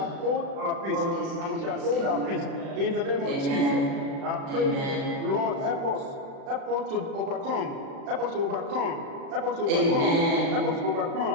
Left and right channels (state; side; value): late; left; 36 ms